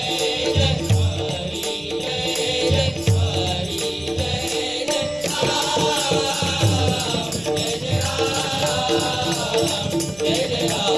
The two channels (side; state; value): left; noise; rumble, 25 dB below the sound